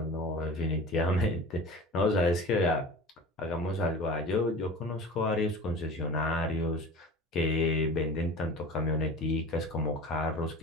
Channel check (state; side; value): normal; both; correlation 0.38